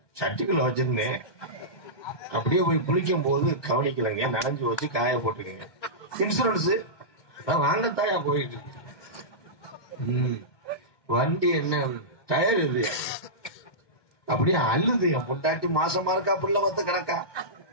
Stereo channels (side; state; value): right; late; 1.2 ms